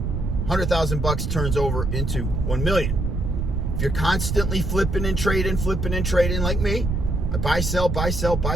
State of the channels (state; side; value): noise; right; rumble, 1 dB below the sound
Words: $100,000 turns over into 1 million. If you're constantly flipping and trading like me, I buy, sell, buy, sell,